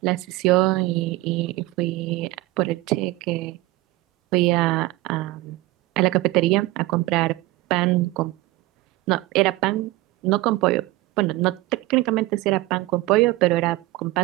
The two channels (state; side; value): quieter; left; 19.7 dB